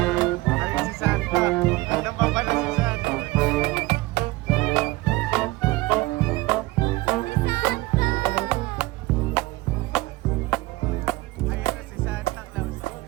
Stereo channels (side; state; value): left; quieter; 20.6 dB